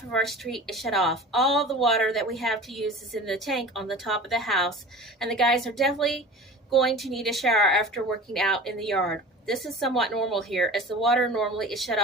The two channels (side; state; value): both; normal; correlation 0.38